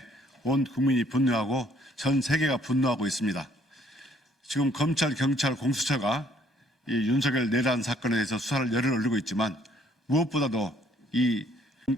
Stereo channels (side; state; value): both; normal; correlation 0.63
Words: 온 국민이 분노하고 전 세계가 분노하고 있습니다. 지금 검찰, 경찰, 공수처가 이 윤석열 내란 사건에 대해서 수사를 열을 올리고 있지만 무엇보다도 이